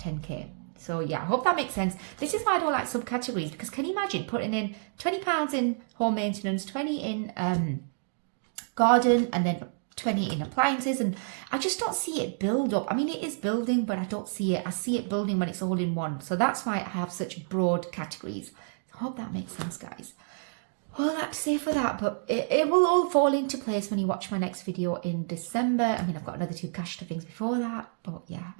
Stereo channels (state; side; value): silent; left; digital silence